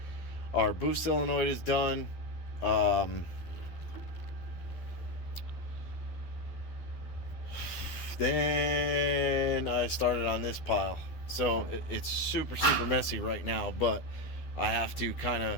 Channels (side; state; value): right; late; 12 ms